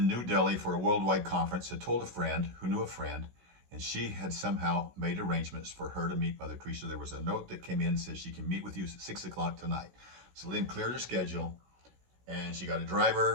New Delhi for a worldwide conference, had told a friend who knew a friend, and she had somehow made arrangements for her to meet Mother Teresa. There was a note that came in and said she can meet with you at 6 o'clock tonight. So Lynn cleared her schedule, and she got a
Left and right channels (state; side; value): late; left; 16 ms